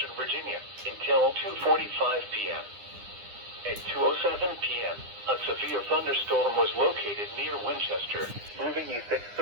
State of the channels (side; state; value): left; late; 9.9 ms